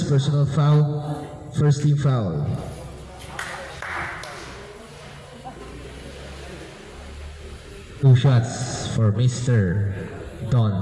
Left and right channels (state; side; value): identical; both; correlation 1.00